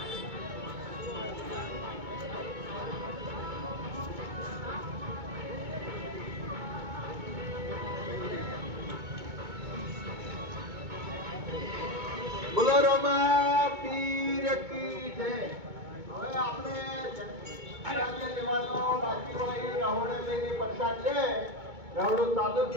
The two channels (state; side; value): late; left; 2.2 ms